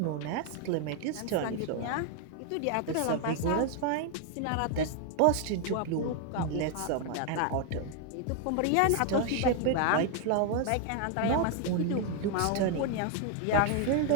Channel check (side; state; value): both; different; correlation 0.01